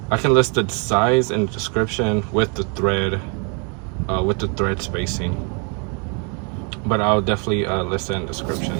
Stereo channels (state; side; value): quieter; left; 35.9 dB